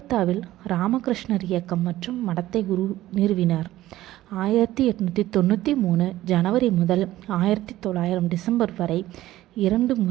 ராமகிருஷ்ணர் இயக்கம் மற்றும் மடத்தை நிறுவினார். 1893 ஜனவரி முதல் 1900 டிசம்பர் வரை 2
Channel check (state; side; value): quieter; left; 15.2 dB